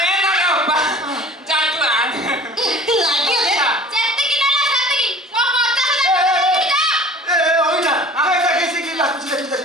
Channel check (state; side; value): normal; both; correlation 0.43